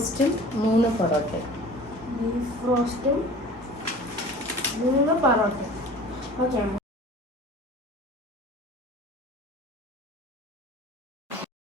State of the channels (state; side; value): normal; both; correlation 0.43